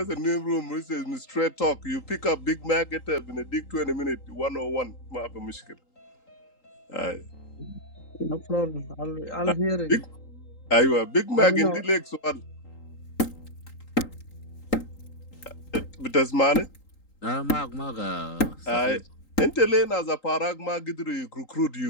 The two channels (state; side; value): late; right; 3.8 ms